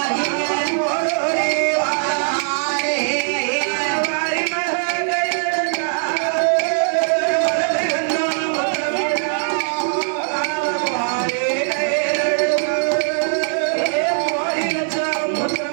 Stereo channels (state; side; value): silent; left; digital silence